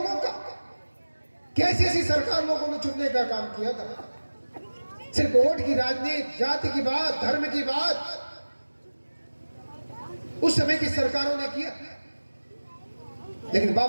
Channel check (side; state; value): both; inverted; correlation -1.00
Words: का। कैसी ऐसी सरकार लोगों ने चुनने का काम किया था, सिर्फ वोट की राजनीति, जाति की बात, धर्म की बात उस समय की सरकारों ने किया। लेकिन